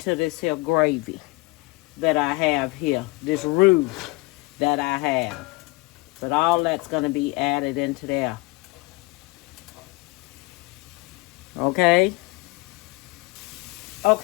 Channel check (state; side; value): quieter; right; 23.7 dB